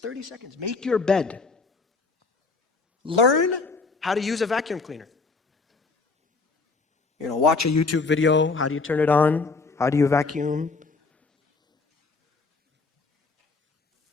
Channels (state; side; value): quieter; right; 4.1 dB